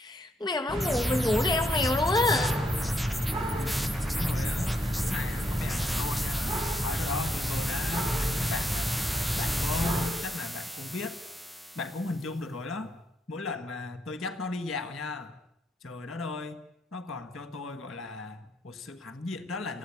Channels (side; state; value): both; normal; correlation 0.77